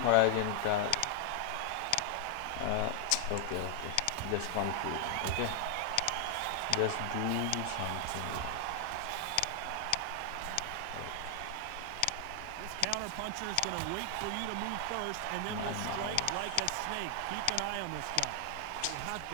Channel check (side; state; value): both; different; correlation 0.00